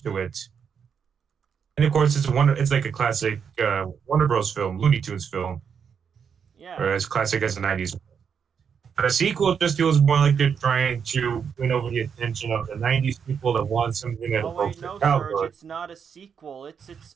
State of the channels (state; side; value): quieter; left; 6.9 dB